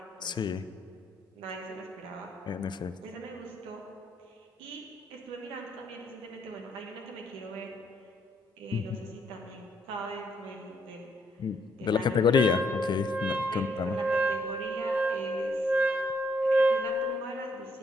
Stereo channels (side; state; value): both; normal; correlation 0.71